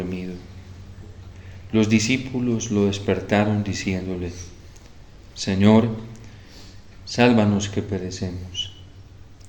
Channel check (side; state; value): both; identical; correlation 1.00